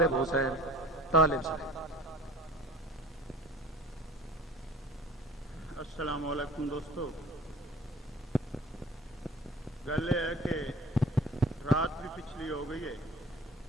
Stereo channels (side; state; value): both; normal; correlation 0.45